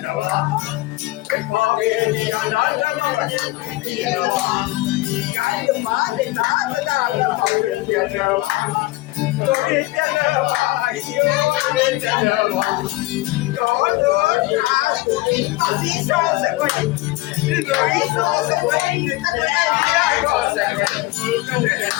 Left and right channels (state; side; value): quieter; right; 19.8 dB